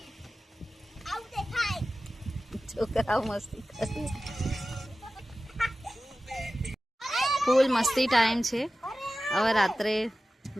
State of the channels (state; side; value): normal; both; correlation 0.95